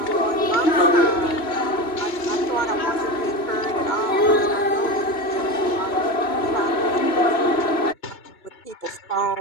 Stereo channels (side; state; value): right; late; 2.9 ms